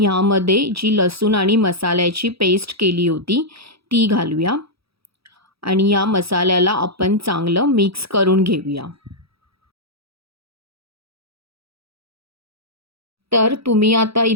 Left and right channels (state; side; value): late; left; 0.77 ms